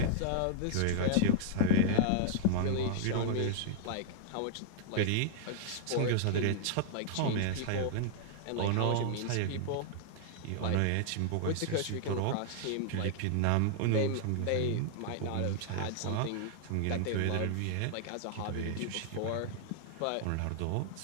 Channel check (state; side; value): different; both; correlation 0.00